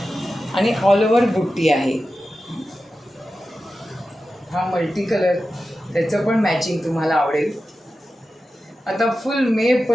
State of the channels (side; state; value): both; normal; correlation 0.93